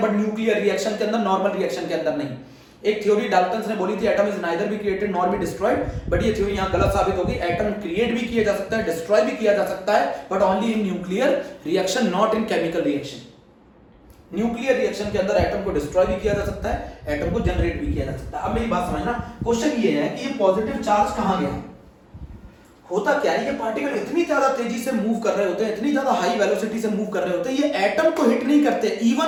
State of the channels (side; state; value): both; identical; correlation 1.00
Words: बट न्यूक्लियर रिएक्शन के अंदर, नॉर्मल रिएक्शन के अंदर नहीं। एक थ्योरी डाल्टन्स ने बोली थी atom is neither be created nor be destroyed, but ये थ्योरी यहां गलत साबित होगी। एटम क्रिएट भी किया जा सकता है, डिस्ट्रॉय भी किया जा सकता है, but only in nuclear reaction, not in chemical reaction. Nuclear reaction के अंदर एटम को डिस्ट्रॉय भी किया जा सकता है, एटम को जनरेट भी किया जा सकता है। अब मेरी बात समझना, क्वेश्चन ये है कि ये पॉजिटिव चार्ज कहां गया, होता क्या है, ये पार्टिकल इतनी ज्यादा तेजी से मूव कर रहे होते हैं, इतनी ज्यादा हाई वेलोसिटी से मूव कर रहे होते हैं, ये एटम को हिट नहीं करते, इवन